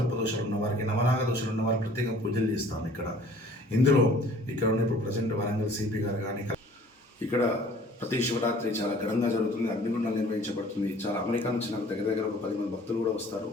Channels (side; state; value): both; normal; correlation 0.52